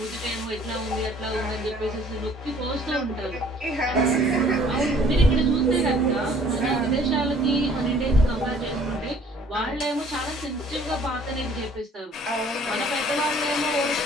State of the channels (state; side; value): normal; both; correlation 0.56